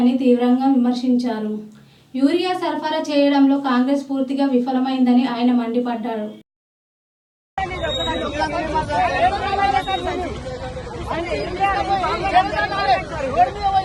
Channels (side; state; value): both; identical; correlation 1.00